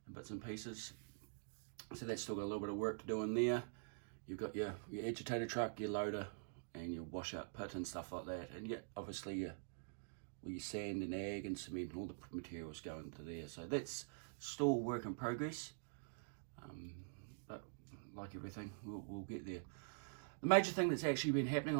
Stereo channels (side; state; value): left; silent; digital silence